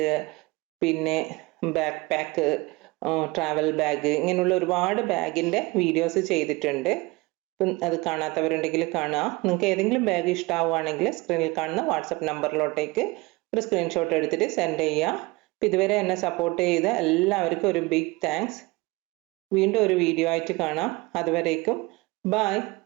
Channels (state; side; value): quieter; left; 23.4 dB